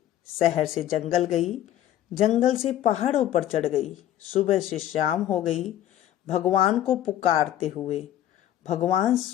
शहर से जंगल गई, जंगल से पहाड़ों पर चढ़ गई। सुबह से शाम हो गई भगवान को पुकारते हुए। भगवान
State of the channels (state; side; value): quieter; right; 12.1 dB